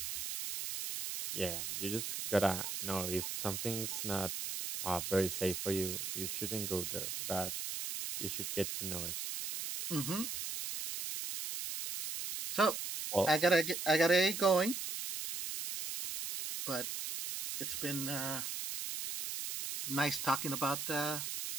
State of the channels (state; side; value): noise; right; hiss, 4 dB below the sound